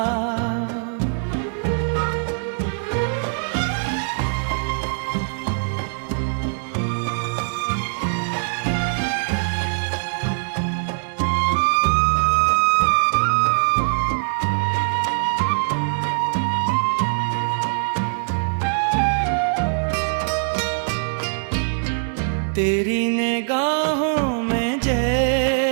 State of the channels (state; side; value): silent; left; digital silence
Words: तेरी निगाहों में